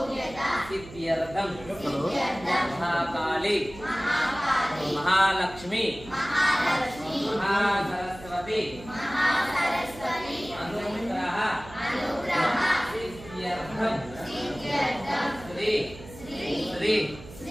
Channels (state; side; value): noise; right; hum, 16 dB below the sound